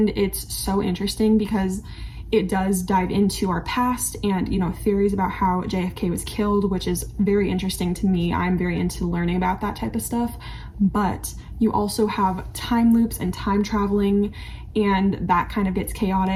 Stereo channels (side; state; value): both; identical; correlation 1.00